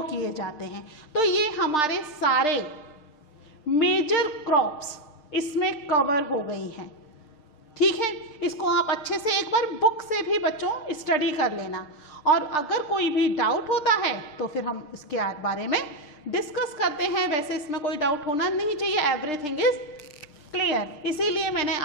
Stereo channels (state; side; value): late; right; 6.6 ms